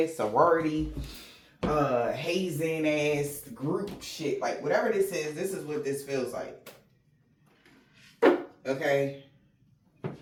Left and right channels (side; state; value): both; identical; correlation 1.00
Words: sorority, hazing ass group shit, like whatever this is what this feels like. Okay.